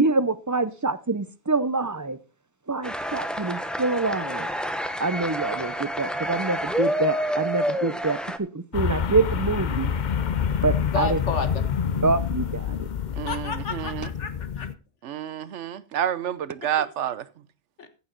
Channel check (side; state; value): both; normal; correlation -0.05